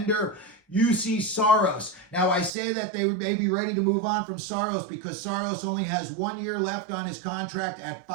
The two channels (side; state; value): left; drops out; at 2.5 s